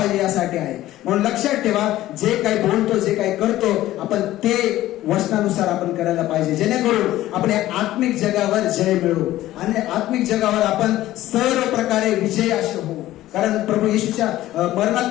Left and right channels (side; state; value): right; quieter; 15.0 dB